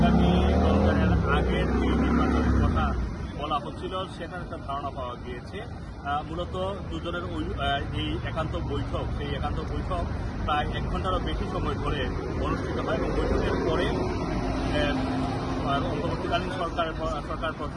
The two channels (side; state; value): both; identical; correlation 1.00